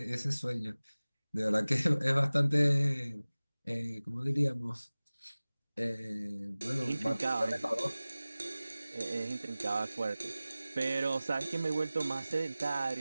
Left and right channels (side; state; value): both; inverted; correlation -0.98